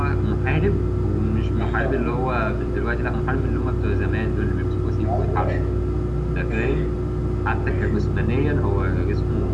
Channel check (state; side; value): identical; both; correlation 1.00